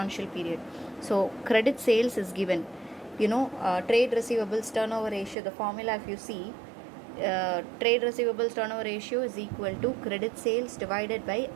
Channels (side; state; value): left; drops out; at 5.4 s